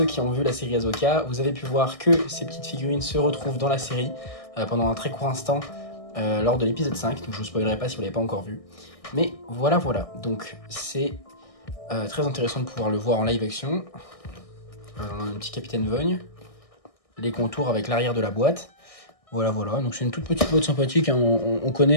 qui ont vu la série Ahsoka, vous avez pu voir que ces petites figurines se retrouvent dans la série pendant un très court instant. Lors de l'épisode 5, donc je ne vous spoilerai pas si vous ne l'avez pas encore vu. Mais voilà, donc c'est très intéressant de pouvoir le voir en live action. On a un petit Capitaine Vogne, les contours avec l'arrière de la boîte. Voilà, donc c'est une toute petite boîte sympathique, hein. On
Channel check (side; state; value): right; late; 1.6 ms